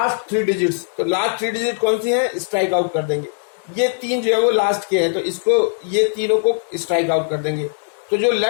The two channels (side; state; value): right; silent; 65 dB below the other